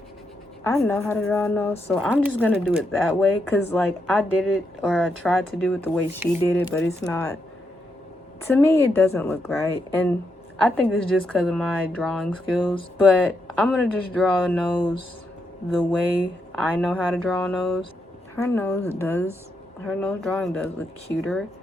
I know how to draw a nose, so I'm just gonna do it that way because like I did it, or I tried to do it the way she did it, but it's not, to me it doesn't look right. And I think it's just because of my drawing skills, but I'm gonna just draw a nose the way I know how to draw a nose. Her nose drawing does look cuter,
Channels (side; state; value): both; normal; correlation 0.81